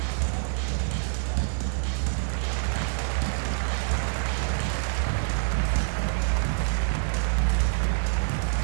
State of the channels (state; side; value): silent; left; 61 dB below the other